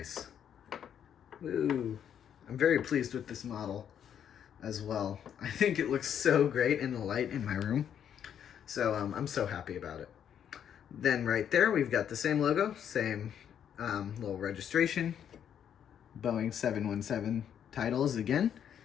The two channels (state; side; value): quieter; right; 9.0 dB